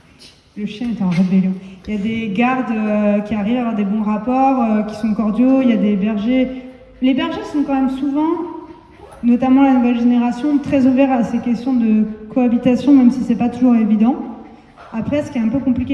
chien est en rébellion. Il y a des gardes qui arrivent à avoir des bons rapports, qui sont cordiaux. Il y a des bergers. Les bergers sont quand même souvent, notamment la nouvelle génération, très ouverts à ces questions de cohabitation, même si c'est pas toujours évident. Après, ce qui est un peu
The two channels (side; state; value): both; identical; correlation 1.00